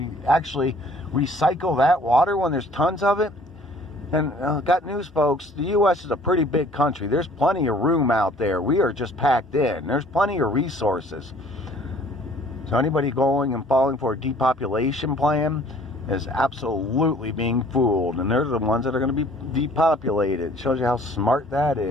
actually recycle that water when there's tons of it. And got news, folks, the U.S. is a pretty big country. There's plenty of room out there. We are just packed in. There's plenty of resources. So anybody going and falling for a depopulation plan is absolutely being fooled. And they're the ones that are going to be depopulated. It shows you how smart that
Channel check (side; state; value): both; normal; correlation 0.54